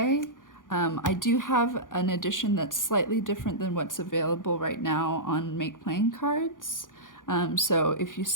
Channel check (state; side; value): late; right; 0.89 ms